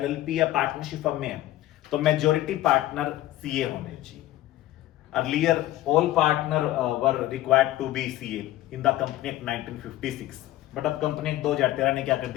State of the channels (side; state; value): right; quieter; 15.1 dB